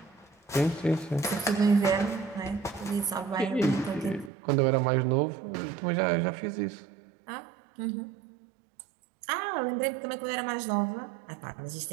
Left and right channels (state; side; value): drops out; left; at 4.3 s